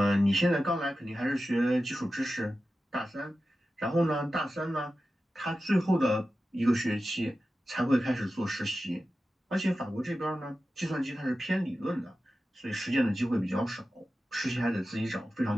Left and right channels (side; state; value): both; normal; correlation 0.93